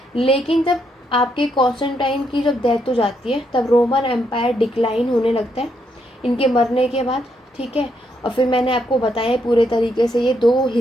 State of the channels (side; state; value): both; normal; correlation 0.77